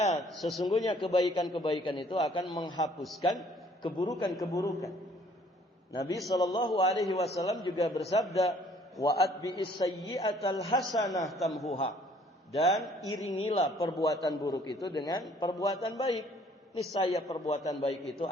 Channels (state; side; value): normal; both; correlation 0.59